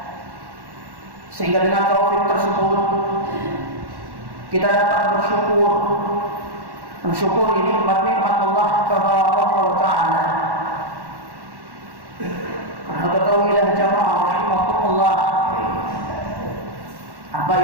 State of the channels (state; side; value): late; left; 1.1 ms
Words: sehingga dengan taufik tersebut kita dapat mensyukuri nikmat-nikmat Allah Tabaraka wa ta'ala. Karena ketahuilah jamaah rahimakumullah, apa